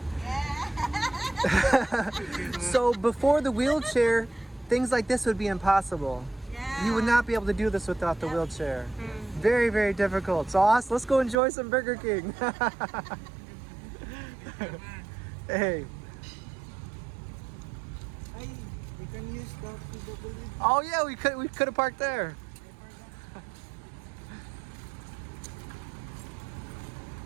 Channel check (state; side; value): drops out; left; at 11.4 s